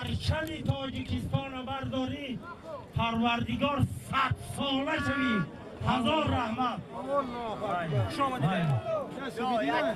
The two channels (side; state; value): both; identical; correlation 1.00